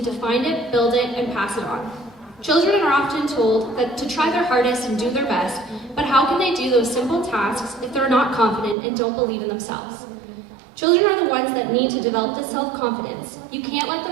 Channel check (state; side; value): drops out; left; at 8.8 s